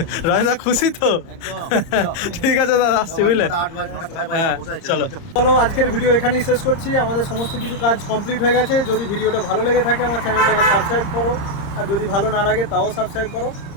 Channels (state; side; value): late; right; 30 ms